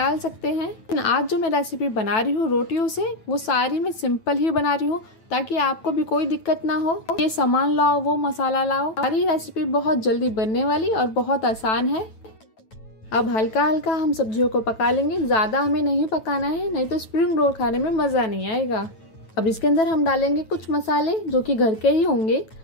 सकते हैं। लेकिन आज जो मैं रेसिपी बना रही हूँ रोटियों से, वो सारी मैं सिंपल ही बना रही हूँ ताकि आपको भी कोई दिक्कत ना हो। ये सामान लाओ, वो मसाला लाओ, सारी रेसिपी बहुत जल्दी बनने वाली और बहुत आसान है। अब हल्का हल्का हम सब्जियों को पका लेंगे, ज़्यादा हमें नहीं पकाना है, नहीं तो स्प्रिंग रोल खाने में मज़ा नहीं आएगा। अब इसके अंदर हम डालेंगे कुछ मसाले जो कि घर के ही होंगे।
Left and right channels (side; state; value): right; late; 9.1 ms